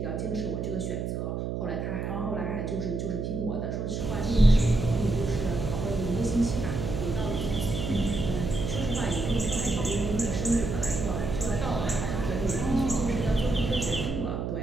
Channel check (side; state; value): right; noise; hum, 3 dB below the sound